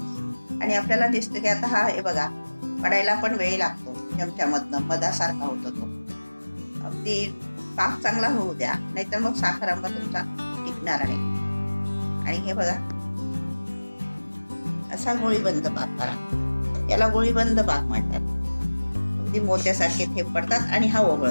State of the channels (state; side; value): inverted; both; correlation -1.00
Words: आणि आपल्याला दिसतं की आता हा हे बघा पडायला पण वेळ लागतो, चमच्यामधनं मधासारखा होतो तो. अगदी पाक चांगला होऊ द्या, नाहीतर मग साखरांबा तुमचा टिकणार नाही. आणि हे बघा असा गोळीबंद पाक करा, याला गोळीबंद पाक म्हणतात. अगदी मोत्यासारखे थेंब पडतात आणि हा